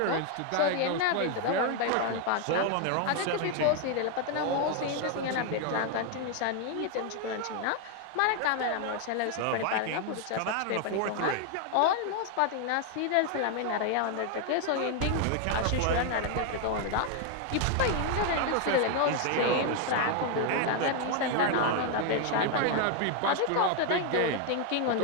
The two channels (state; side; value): different; both; correlation 0.01